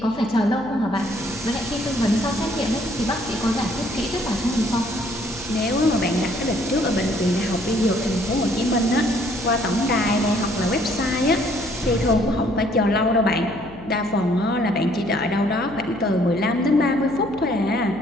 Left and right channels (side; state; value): left; noise; hum, 18 dB below the sound